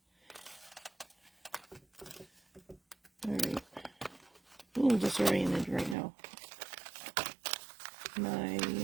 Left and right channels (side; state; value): left; drops out; at 6.0 s